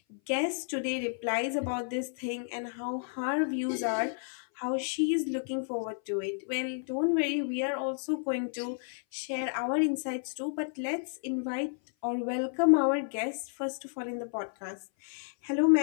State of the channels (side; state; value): right; silent; 56 dB below the other